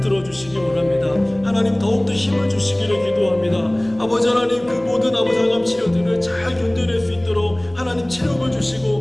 주시기 원합니다. 하나님 더욱더 힘을 주시기를 기도합니다. 아버지 하나님 그 모든 아버지 항암 치료들을 잘 견뎌낼 수 있도록 하나님 체력을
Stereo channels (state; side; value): noise; right; hum, 25 dB below the sound